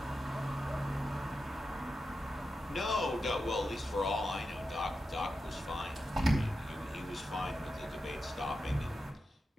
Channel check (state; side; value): normal; both; correlation 0.89